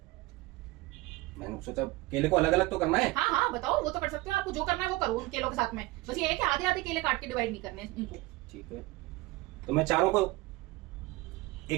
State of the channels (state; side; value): quieter; left; 20.7 dB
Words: मैंने सोचा केले को अलग अलग तो करना है। हाँ हाँ, बताओ, वो तो कर सकते हो, आपको जो करना है वो करो उन केलों के साथ में। बस ये है कि आधे आधे केले काट के डिवाइड नहीं करने हैं इनको। ठीक है, तो मैं चारों को